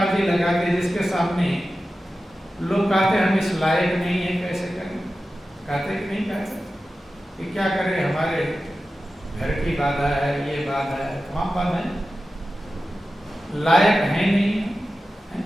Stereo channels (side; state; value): both; normal; correlation 0.94